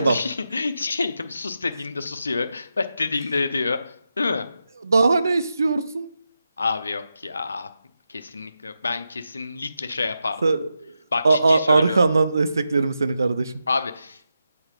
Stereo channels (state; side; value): inverted; both; correlation -0.88